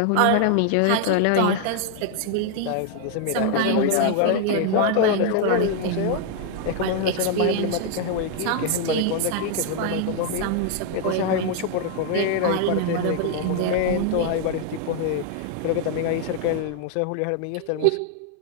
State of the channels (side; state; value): both; different; correlation 0.00